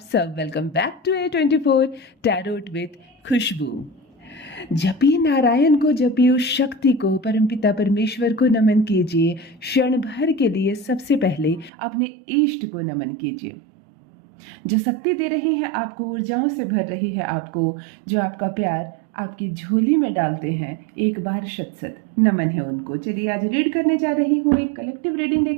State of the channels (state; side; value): drops out; left; at 11.7 s